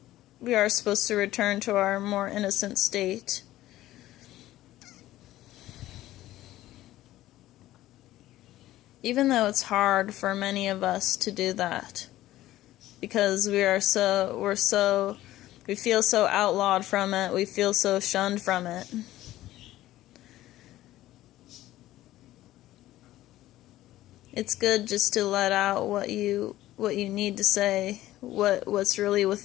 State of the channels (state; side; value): quieter; right; 15.0 dB